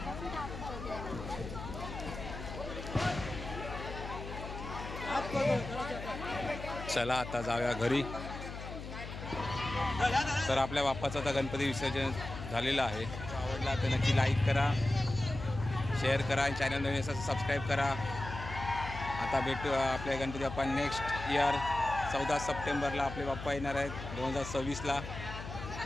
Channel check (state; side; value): noise; left; hum, 9 dB below the sound